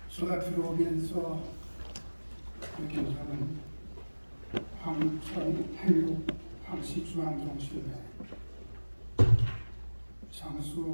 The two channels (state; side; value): inverted; both; correlation -1.00